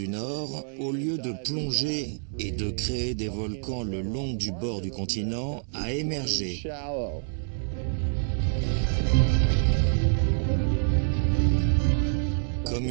Nord, au lieu de plonger et de créer des volcans le long du bord du continent, a émergé. Comme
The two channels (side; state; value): left; silent; digital silence